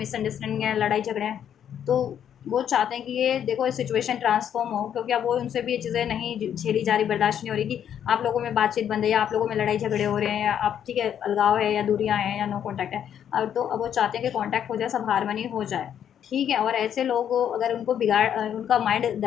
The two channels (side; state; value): right; quieter; 9.3 dB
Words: है, लड़ाई झगड़े हैं, तो वो चाहते हैं कि ये देखो सिचुएशन ट्रांसफॉर्म हो, क्योंकि अब वो उनसे भी ये चीज़ें नहीं झेली जा रही, बर्दाश्त नहीं हो रही कि आप लोगों में बातचीत बंद है, या आप लोगों में लड़ाई झगड़े हो रहे हैं, या आप, ठीक है, अलगाव है, या दूरियाँ हैं, या नो कॉन्टैक्ट है। अब तो अब वो चाहते हैं कि कॉन्टैक्ट हो जाए, सब हारमनी हो जाए, ठीक है। और ऐसे लोग अगर उनको उनका माइंड